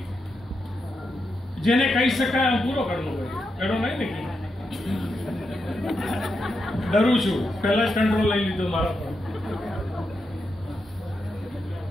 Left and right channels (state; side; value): normal; both; correlation 0.85